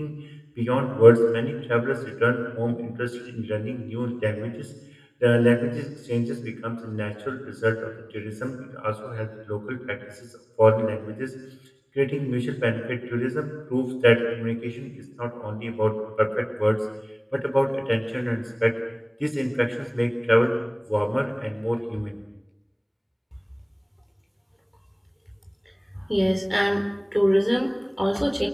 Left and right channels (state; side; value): identical; both; correlation 1.00